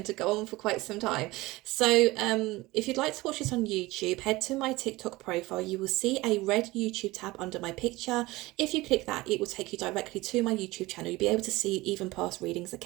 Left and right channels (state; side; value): quieter; left; 20.2 dB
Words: to go on for quite some time. So if you'd like to watch this on YouTube, head to my TikTok profile. You will see a red YouTube tab under my picture. If you click that, it will take you directly to my YouTube channel. You'll be able to see even past readings,